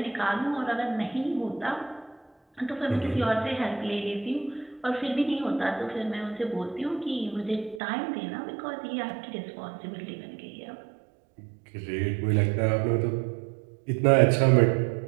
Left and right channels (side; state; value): left; drops out; at 7.8 s